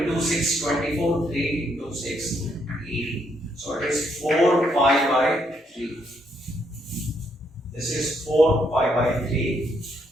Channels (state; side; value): normal; both; correlation 0.74